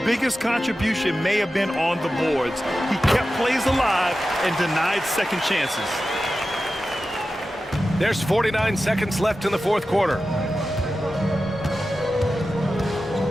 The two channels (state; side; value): normal; both; correlation 0.93